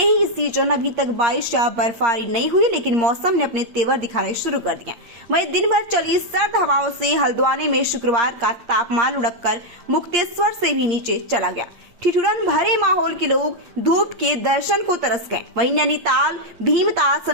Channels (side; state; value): left; late; 8.6 ms